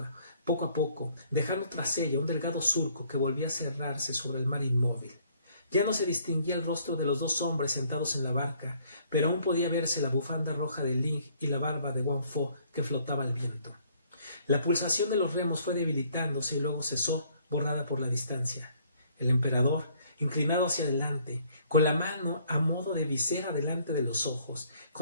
dejando tras ella un delgado surco que volvía a cerrarse sobre el mar inmóvil. Ya no se distinguía el rostro de los dos hombres sentados en la barca, pero aún podía verse la bufanda roja de Ling y la barba de Wang Fo que flotaba al viento. La pulsación de los remos fue debilitándose y luego cesó, borrada por la distancia. El emperador, inclinado hacia adelante, con la mano a modo de visera delante de los ojos,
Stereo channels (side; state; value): both; inverted; correlation -0.63